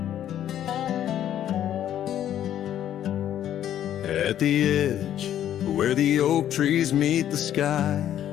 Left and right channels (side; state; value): right; quieter; 11.0 dB